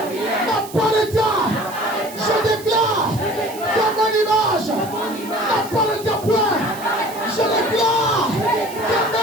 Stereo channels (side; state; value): right; noise; hiss, 16 dB below the sound